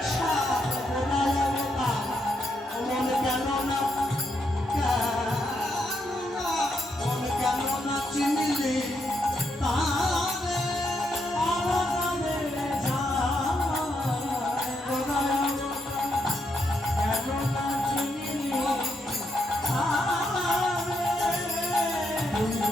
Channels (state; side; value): normal; both; correlation 0.79